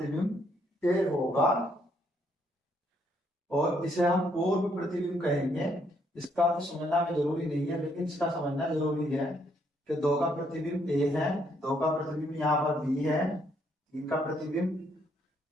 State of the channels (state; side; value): normal; both; correlation 0.71